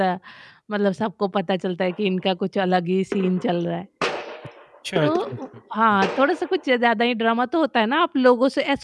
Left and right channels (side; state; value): both; identical; correlation 1.00